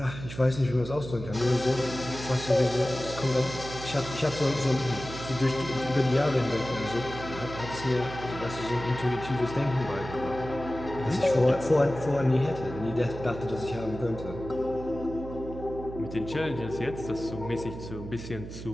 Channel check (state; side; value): noise; right; hum, 11 dB below the sound